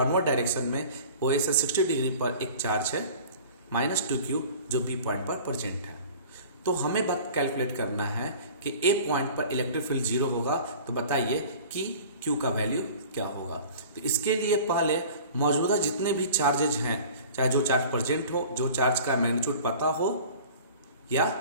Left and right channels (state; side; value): inverted; both; correlation -0.43